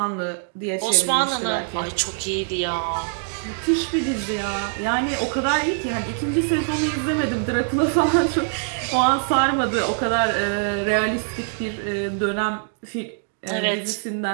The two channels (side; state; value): left; silent; digital silence